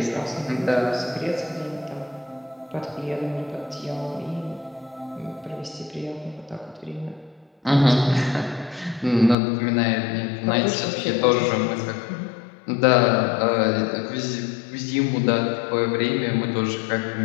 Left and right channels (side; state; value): right; drops out; at 9.3 s